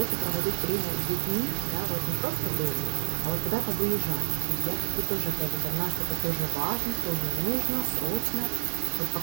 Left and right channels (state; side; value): silent; left; digital silence